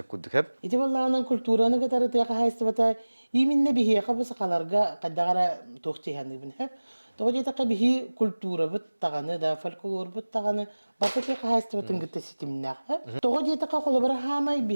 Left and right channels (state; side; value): inverted; both; correlation -1.00